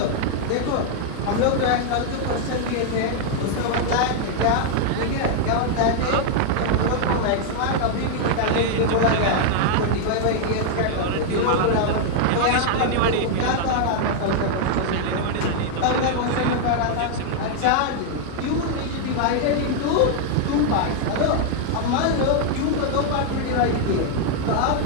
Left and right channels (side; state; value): both; different; correlation 0.00